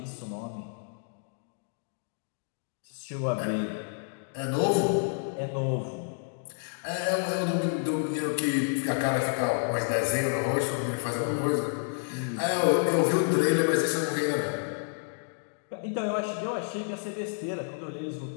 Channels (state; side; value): silent; right; digital silence